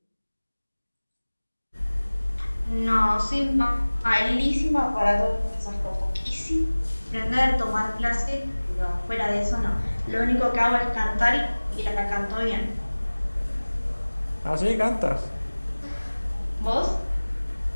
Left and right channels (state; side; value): inverted; both; correlation -1.00